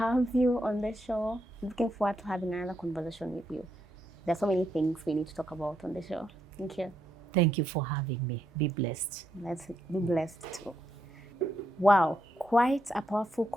you on the show. Looking forward to having another conversation with you. There's so many things we need to talk about on the show. Thank you. Thank you for having me. Be blessed. Let's be blessed too. Wow, quite a powerful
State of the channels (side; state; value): both; normal; correlation 0.79